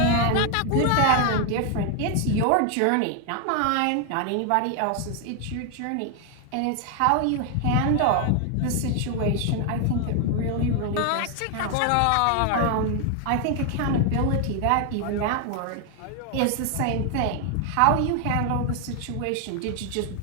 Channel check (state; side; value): different; both; correlation 0.01